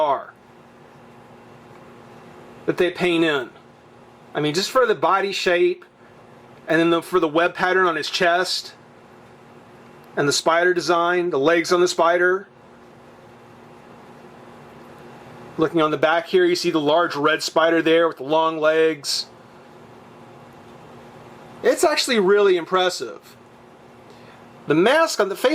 that they paint in. I mean, just for the body shape, and then for the web pattern on his chest, and the spider design, the legs on the spider. Looking on the back here, you see the large red spider there with the long legs. It's actually really impressive. The mask, on the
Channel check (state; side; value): identical; both; correlation 1.00